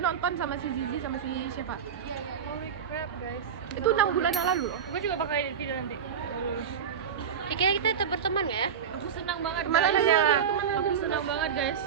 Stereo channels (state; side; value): quieter; left; 7.5 dB